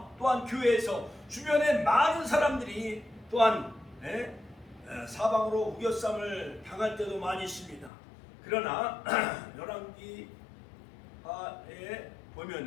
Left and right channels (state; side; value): drops out; right; at 7.9 s